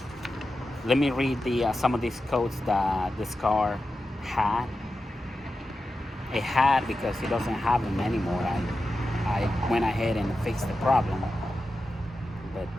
Let me read some of these codes that this car had. It had because it doesn't have them anymore. I went ahead and fixed the problem.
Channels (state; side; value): normal; both; correlation 0.91